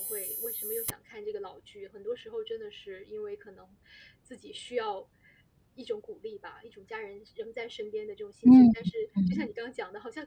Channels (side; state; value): both; identical; correlation 1.00